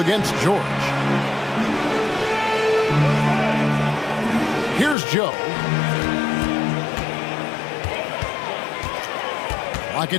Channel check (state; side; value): drops out; right; at 5.0 s